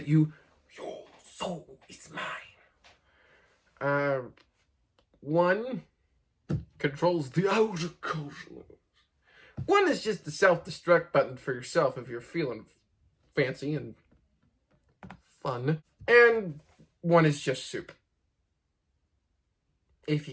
you, "Your soul is mine." One controls the outer cosmos. One is just the self-destruct button for yourself if you're feeling fancy and fun. And one is just soup. If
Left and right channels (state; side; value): identical; both; correlation 1.00